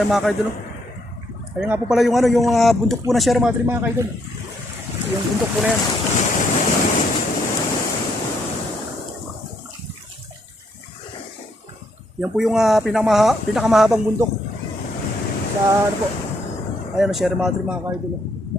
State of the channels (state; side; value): normal; both; correlation 0.73